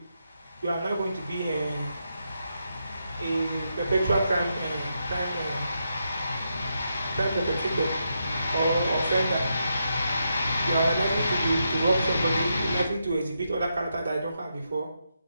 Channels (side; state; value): both; inverted; correlation -0.83